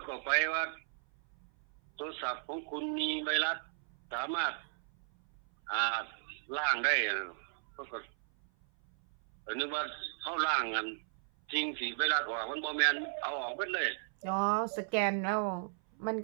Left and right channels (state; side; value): silent; left; 54 dB below the other